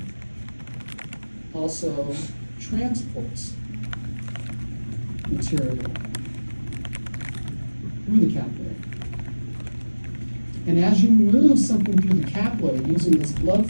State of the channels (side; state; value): both; inverted; correlation -1.00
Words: also transports material through the capillary. And as you move something through the capillary using this